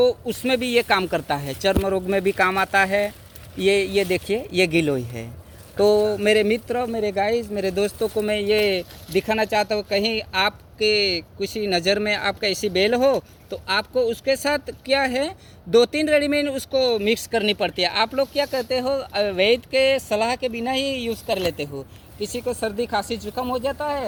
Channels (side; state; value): both; identical; correlation 1.00